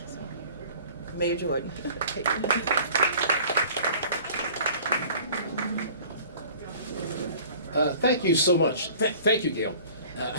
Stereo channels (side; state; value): both; inverted; correlation -0.47